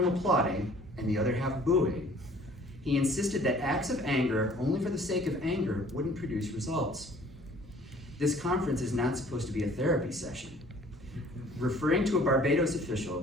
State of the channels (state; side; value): normal; both; correlation 0.54